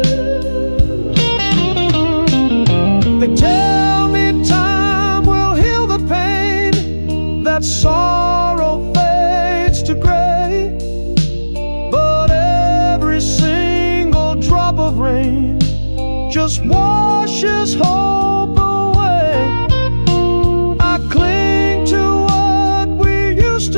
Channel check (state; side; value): inverted; both; correlation -1.00